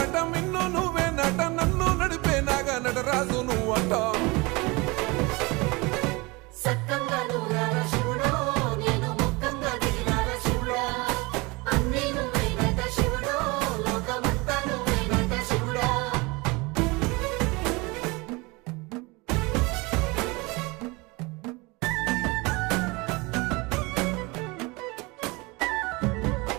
మిన్ను నువ్వే నట నన్ను నడిపే నాగా నటరాజు నువ్వంట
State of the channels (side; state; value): left; quieter; 25.3 dB